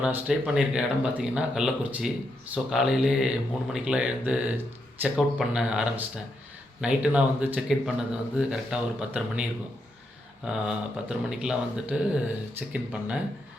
நான் ஸ்டே பண்ணியிருக்க இடம் பார்த்தீங்கன்னா கள்ளக்குறிச்சி. ஸோ காலையிலே 3 மணிக்கெலாம் எழுந்து செக் அவுட் பண்ண ஆரம்பிச்சிட்டேன். நைட்டு நான் வந்து செக்இன் பண்ணது வந்து கரெக்டாக ஒரு 10:30 மணி இருக்கும். 10:30 மணிக்கெலாம் வந்துட்டு செக்இன் பண்ணேன்.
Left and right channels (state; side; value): normal; both; correlation 0.81